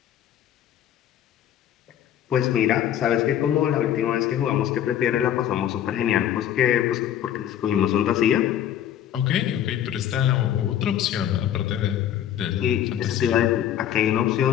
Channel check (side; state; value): right; quieter; 10.7 dB